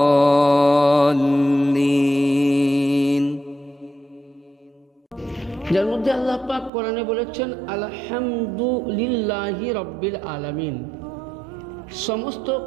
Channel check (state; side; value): drops out; left; at 6.7 s